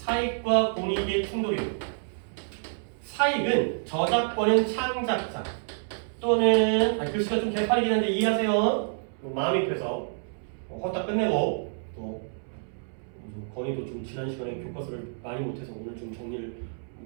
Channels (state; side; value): silent; left; 59 dB below the other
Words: 공익의 충돌이에요. 사익은 저작권은 창작자 또는 글씨가 좀 개판이긴 한데 이해하세요? 마음이 급해서 헛다 끝내고 또 건이도 좀 지난 시간에 교과서를 많이 못해서 오늘 좀 정리를